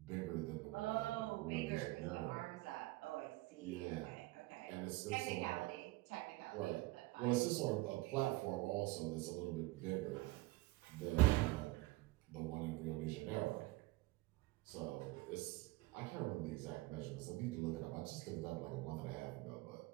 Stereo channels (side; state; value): left; quieter; 20.6 dB